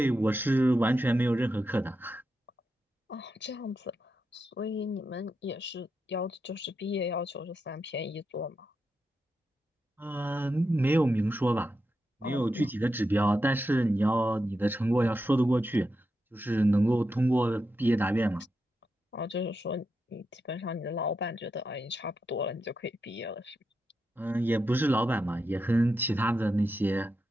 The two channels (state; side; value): normal; both; correlation 0.87